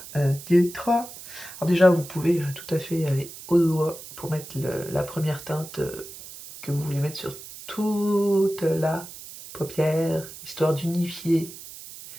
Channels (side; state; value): right; noise; hiss, 14 dB below the sound